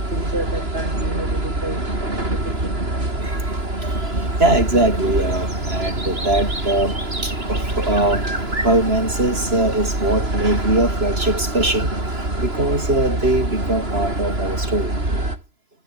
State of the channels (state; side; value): late; left; 2.9 ms